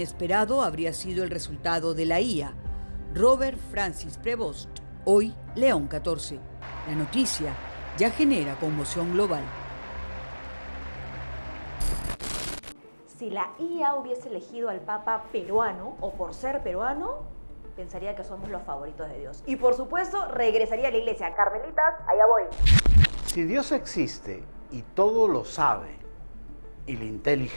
habría sido el resultado de la IA, Robert Francis Prevost, hoy León XIV. La noticia ya genera conmoción global. Si la IA hubiese elegido al Papa peruano, o por ser peruano, pensaría que somos los favoritos de Dios. Y por supuesto, regresaría a la iglesia. Carmelitas, allá voy. Si Dios existe y todo lo sabe, y la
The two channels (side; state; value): both; inverted; correlation -1.00